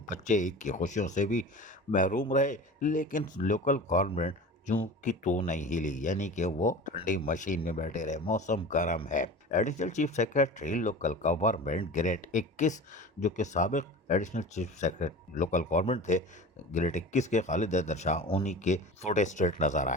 बच्चे ईद की खुशियों से भी महरूम रहे, लेकिन लोकल गवर्नमेंट जू की तो नहीं हिली, यानी कि वो ठंडी मशीन में बैठे रहे। मौसम गर्म है। Additional chief secretary local government grade 21, जो कि साबिक additional chief secretary local government थे ग्रेड 21 के खालिद हैदर शाह, उन्हीं के फोटे स्ट्रेट नजर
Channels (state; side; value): normal; both; correlation 0.35